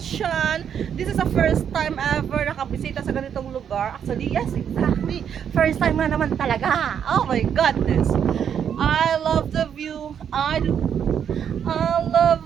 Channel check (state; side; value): quieter; left; 8.3 dB